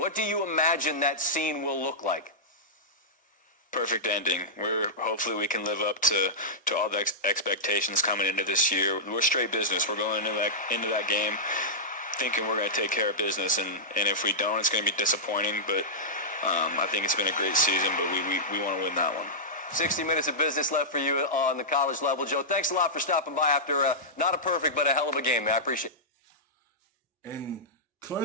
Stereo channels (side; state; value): both; normal; correlation -0.13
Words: do you imagine that scene will look like? Perfect ending. Hopefully we can live up to all the expectations coming into this year. We're straight business. We're going into that game thinking we're going to take care of business, and if we don't, it's going to be disappointing. But I think it's been a great season, but we want to win that one. 60 minutes of business left for you on the college level. Joe, thanks a lot for stopping by after not a perfect but a hell of a game, man. I appreciate it. And